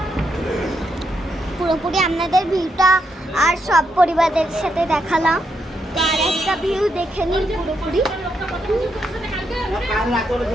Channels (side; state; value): both; normal; correlation 0.80